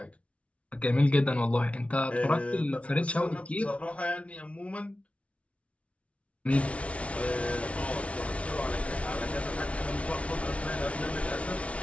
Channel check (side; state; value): right; late; 0.063 ms